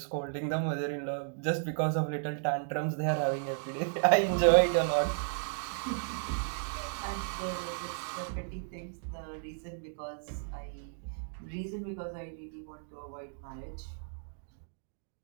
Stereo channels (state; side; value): silent; left; digital silence